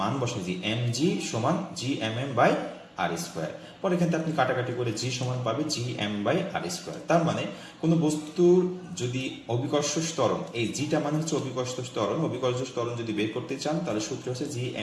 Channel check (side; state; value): both; identical; correlation 1.00